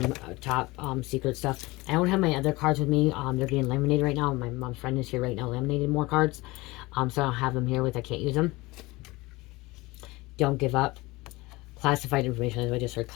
top secret stuff. I don't have my other cards with me. They're getting laminated right now. My mom's friend is here right now laminating more cards. So I don't have them here with. I can't use them. Don't give up. Classified information. I just heard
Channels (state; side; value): quieter; right; 21.7 dB